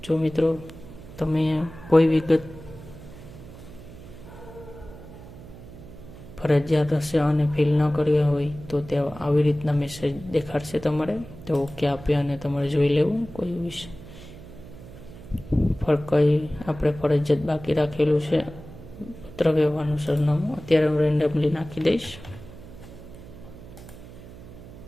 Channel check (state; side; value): noise; right; hum, 16 dB below the sound